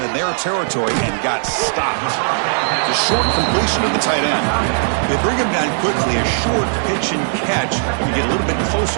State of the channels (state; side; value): silent; left; 65 dB below the other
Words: in their territory and got stopped. The short completion of the tight end. They bring him down quickly. A short pitch and catch to get a little bit